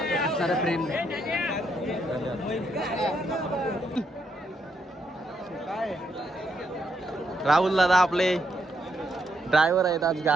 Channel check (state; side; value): normal; both; correlation 0.77